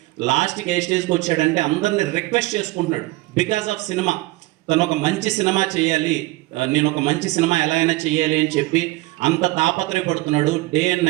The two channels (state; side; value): quieter; left; 20.2 dB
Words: లాస్ట్కి ఏ స్టేజ్కి వచ్చాడంటే అందరిని రిక్వెస్ట్ చేసుకుంటున్నాడు. బికాస్ ఆఫ్ సినిమా, తను ఒక మంచి సినిమా చేయాలి, నేను ఒక మంచి సినిమా ఎలా అయినా చేయాలి అని చెప్పి అంత తాపత్రయపడుతున్నాడు డే అండ్